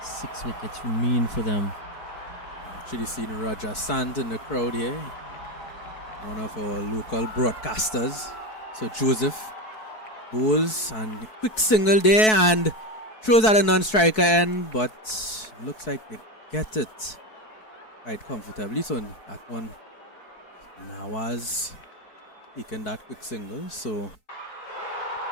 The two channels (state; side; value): late; right; 4.6 ms